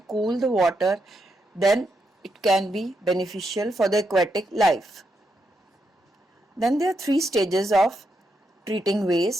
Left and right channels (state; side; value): normal; both; correlation 0.81